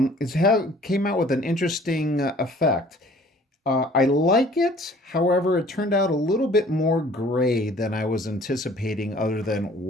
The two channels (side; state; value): both; normal; correlation 0.53